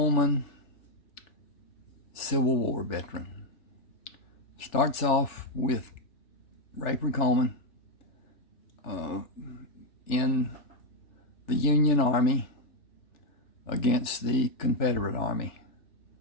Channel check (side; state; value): right; late; 3.4 ms